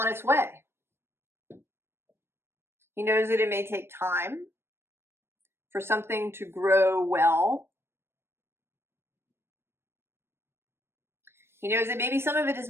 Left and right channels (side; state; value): left; late; 0.12 ms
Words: its way. He knows that it may take time for something to grow well. He knows that maybe some of it is